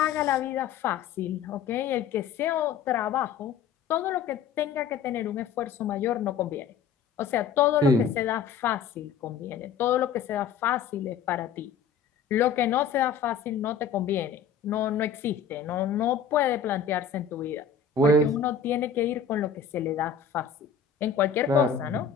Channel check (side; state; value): right; quieter; 6.8 dB